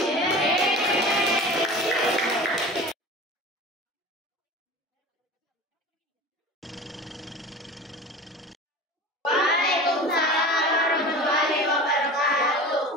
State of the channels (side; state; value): both; normal; correlation 0.35